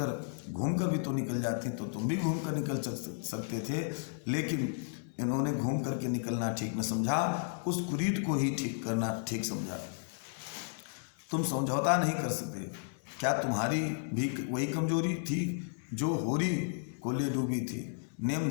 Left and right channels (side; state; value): right; silent; digital silence